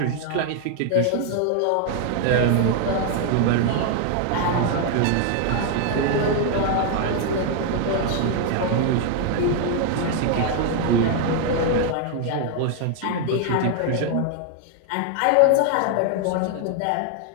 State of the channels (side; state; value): both; different; correlation 0.00